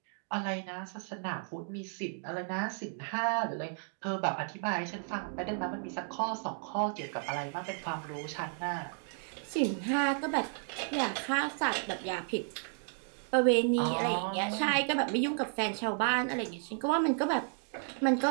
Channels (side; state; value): left; silent; 56 dB below the other